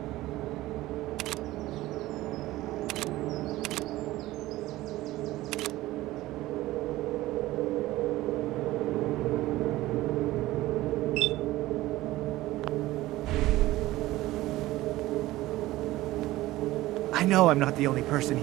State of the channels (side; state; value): left; quieter; 17.1 dB